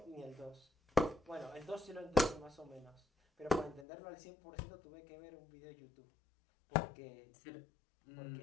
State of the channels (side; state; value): right; drops out; at 3.9 s